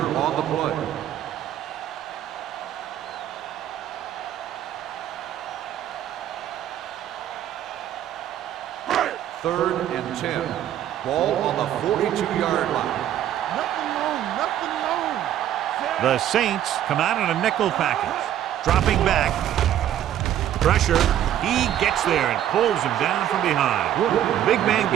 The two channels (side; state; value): left; quieter; 11.3 dB